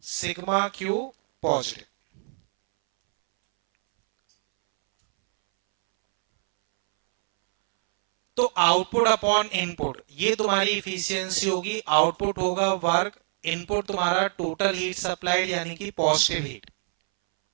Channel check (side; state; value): left; silent; 62 dB below the other